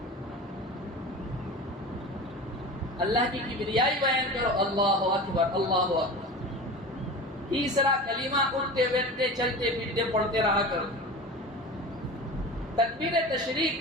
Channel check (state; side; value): normal; both; correlation 0.32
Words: اللہ کی کبریائی بیان کرو، اللہ اکبر اللہ اکبر. تیسرا کلمہ اٹھتے بیٹھتے چلتے پھرتے پڑھتے رہا کرو. تکبیر تشریق